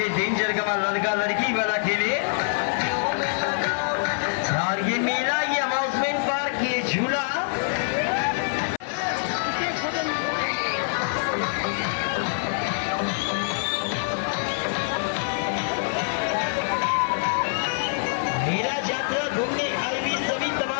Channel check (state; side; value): silent; right; 58 dB below the other